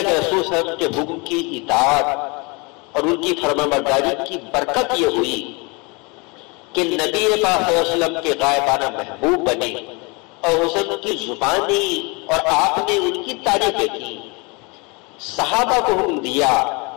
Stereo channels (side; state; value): right; quieter; 28.7 dB